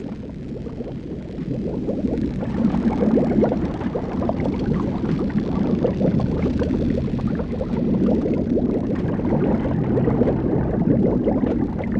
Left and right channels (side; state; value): both; identical; correlation 1.00